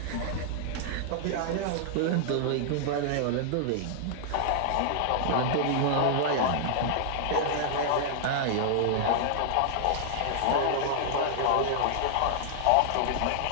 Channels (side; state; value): both; different; correlation -0.01